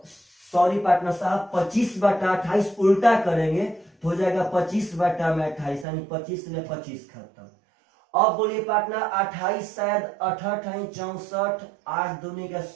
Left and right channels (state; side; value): drops out; left; at 5.9 s